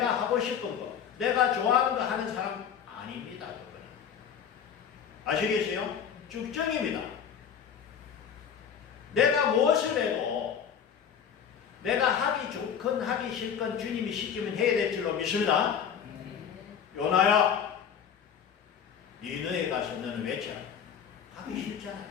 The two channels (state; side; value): quieter; right; 7.9 dB